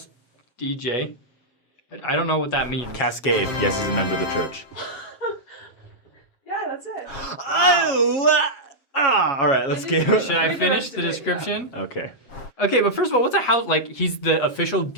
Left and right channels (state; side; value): late; right; 7.4 ms